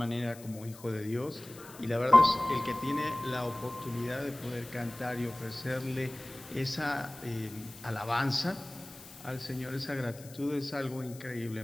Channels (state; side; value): noise; left; hiss, 19 dB below the sound